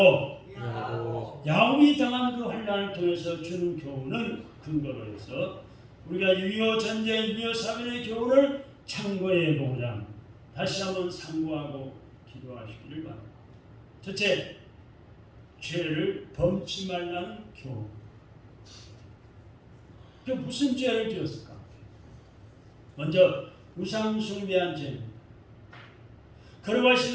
야곱이 당한 그 환난을 통해서 주는 교훈을 근거로 해서 우리가 6.25 전쟁, 6.25 사변의 교훈을 참고해 보고자 다시 한번 상고하고 기도하시기를 바랍니다. 첫째, 죄를 범치 말라는 교훈. 그 무슨 죄를 지었을까? 먼저 우상 숭배한 죄.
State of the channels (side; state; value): both; identical; correlation 1.00